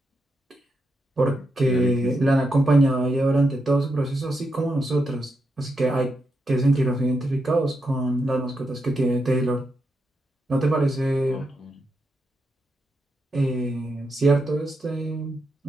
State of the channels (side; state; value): both; normal; correlation 0.84